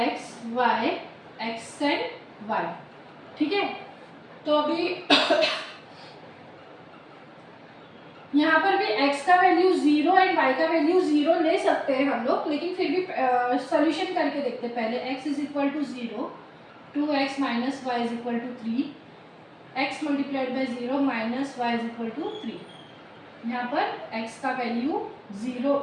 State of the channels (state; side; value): identical; both; correlation 1.00